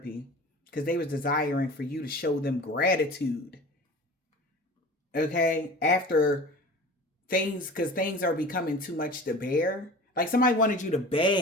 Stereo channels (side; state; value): both; normal; correlation 0.39